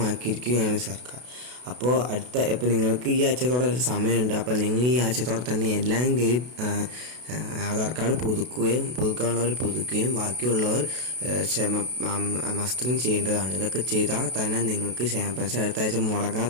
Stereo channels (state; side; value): late; left; 32 ms